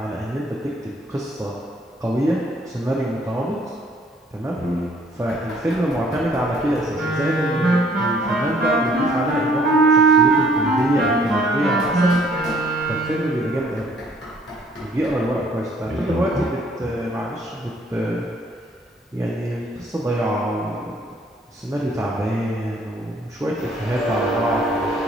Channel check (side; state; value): both; normal; correlation 0.61